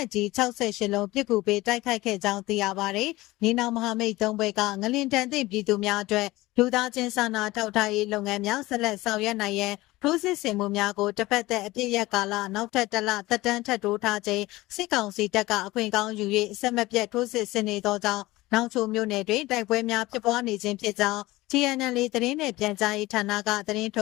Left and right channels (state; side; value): quieter; right; 19.1 dB